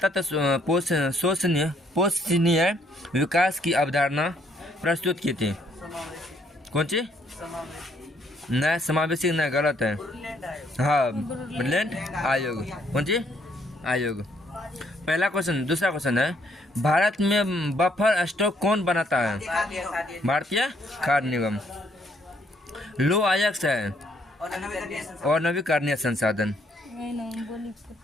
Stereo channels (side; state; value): both; normal; correlation 0.69